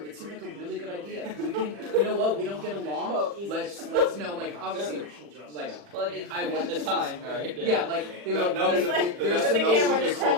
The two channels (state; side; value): late; left; 40 ms